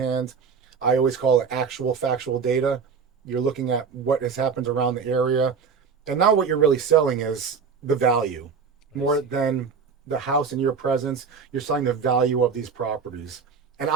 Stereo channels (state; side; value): quieter; left; 5.8 dB